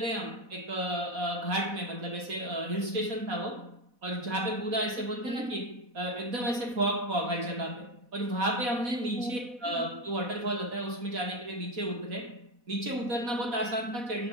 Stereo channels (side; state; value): left; late; 4.1 ms